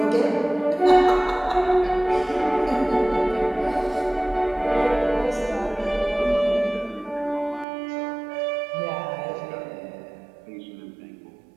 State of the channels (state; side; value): drops out; left; at 7.7 s